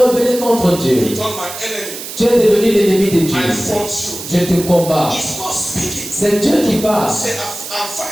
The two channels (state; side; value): noise; right; hiss, 10 dB below the sound